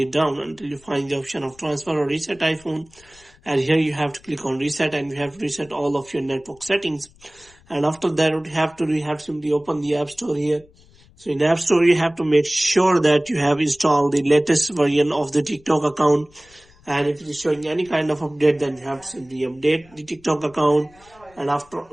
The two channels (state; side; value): noise; left; rumble, 28 dB below the sound